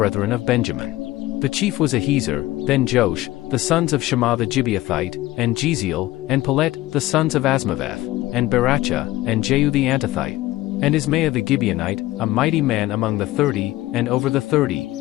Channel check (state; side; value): quieter; right; 17.1 dB